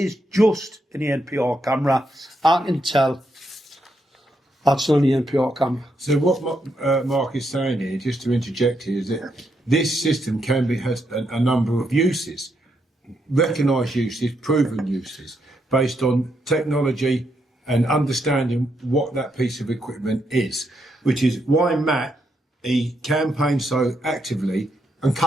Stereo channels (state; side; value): normal; both; correlation 0.79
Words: just an NPR camera, I can tell that's not an NPR camera. So what Mark is saying here, just to interject here, is that this system has a number of uses, recognised uses, proven uses, based on technology and understanding what that piece of equipment is, which is why Matt, he campaigned so actively and